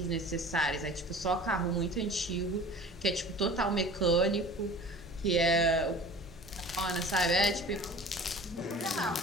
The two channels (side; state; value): both; normal; correlation 0.42